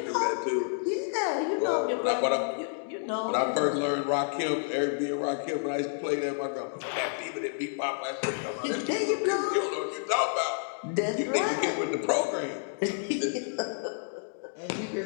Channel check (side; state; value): right; silent; digital silence